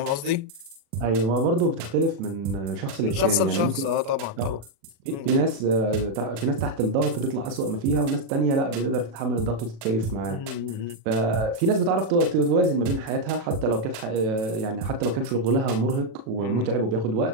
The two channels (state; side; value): late; left; 36 ms